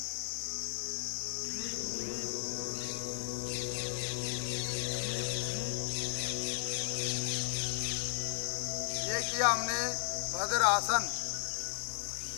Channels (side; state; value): right; silent; digital silence